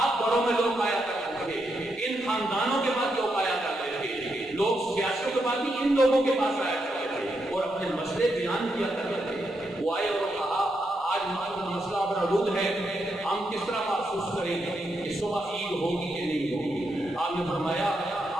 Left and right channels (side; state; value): both; normal; correlation 0.82